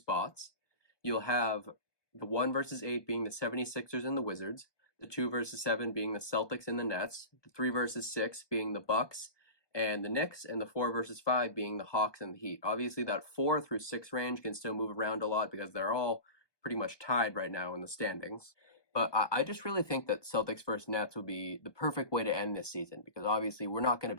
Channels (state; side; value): late; right; 1.2 ms